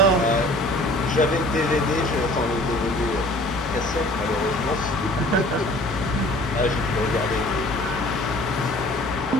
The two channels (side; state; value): both; normal; correlation 0.50